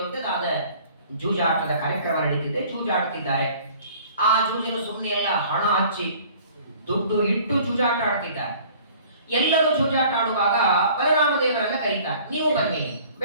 ಜೂಜಾಟದ ಕಾರ್ಯಕ್ರಮ ನಡೀತಿದೆ, ಜೂಜಾಡ್ತಿದ್ದಾರೆ. ಆ ಜೂಜಿನ ಸುಮ್ಮನೆ ಎಲ್ಲ ಹಣ ಹಚ್ಚಿ ದುಡ್ಡು ಇಟ್ಟು ಜೂಜಾಟ ಆಡ್ತಿದ್ದಾರೆ. ಎಲ್ಲರೂ ಜೂಜಾಟ ಆಡುವಾಗ ಬಲರಾಮ ದೇವರನ್ನ ಕರೀತಾರೆ, ನೀವು ಬನ್ನಿ.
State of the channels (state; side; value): inverted; both; correlation -0.51